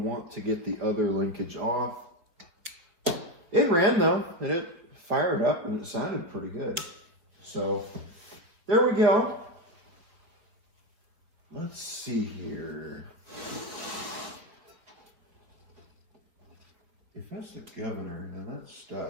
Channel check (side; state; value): left; late; 4.4 ms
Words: to get the other linkage off. It ran though, and it fired up, and it sounded pretty good. So there we go. Let's see here. If that's the governor, then that's